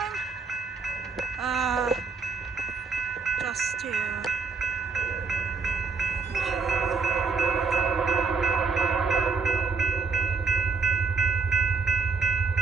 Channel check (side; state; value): left; quieter; 4.7 dB